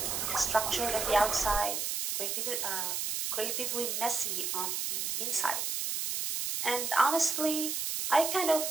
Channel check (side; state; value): right; noise; hiss, 1 dB below the sound